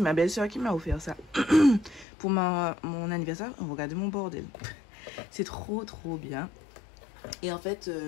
ma belle-sœur qui m'a offert ça pour mon anniversaire. Regardez mon bordel, c'est trop bien. Et en fait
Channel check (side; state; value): right; drops out; at 2.1 s